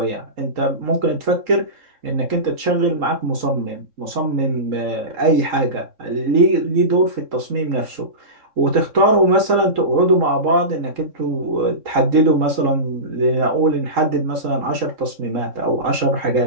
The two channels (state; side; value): late; left; 3.8 ms